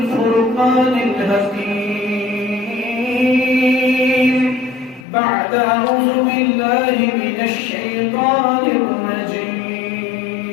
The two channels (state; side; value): drops out; right; at 5.1 s